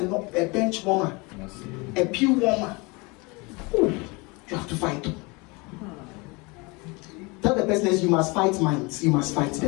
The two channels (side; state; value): right; quieter; 27.1 dB